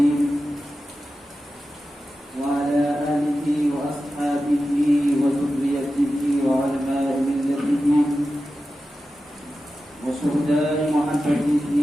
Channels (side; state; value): both; normal; correlation 0.93